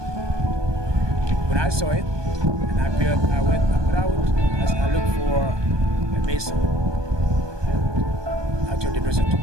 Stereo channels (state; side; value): late; left; 1.2 ms